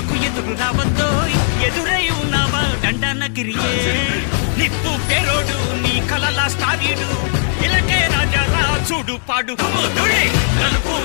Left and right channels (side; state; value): right; silent; digital silence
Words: ఎదురు రావద్దో ఎదురై ఉన్నావా దండనగిరియే నిప్పు పేరోడు నీ కలలా స్టారీడు ఇలకే రాజా చూడు పాడు కుముదుడే నలుపు